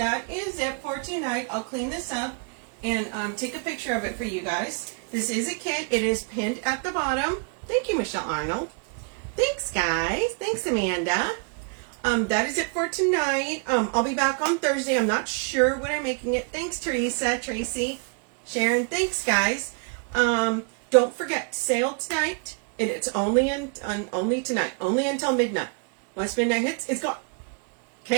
is it for tonight. I'll clean this up and take a picture of it for you guys. This is a kit. It is pinned at the bottom. Thank you, Michelle Arnold. Thanks, guys. Thanks, Amanda. That is it for tonight. I'll be back on Thursday. I'm not sure when I'm making it. Thanks, Teresa, Tracy, Sharon. Thanks, guys. Don't forget, sale tonight. It's only only tonight. Only until midnight. Once midnight hits, it's gone.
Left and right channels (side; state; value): left; quieter; 38.3 dB